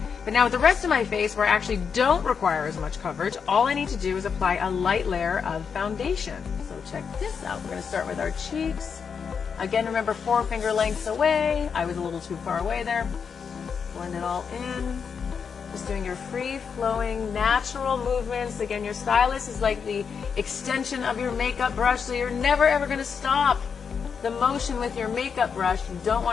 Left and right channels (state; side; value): quieter; right; 6.3 dB